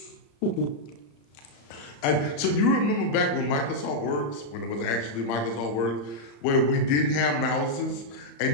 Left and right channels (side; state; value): right; late; 35 ms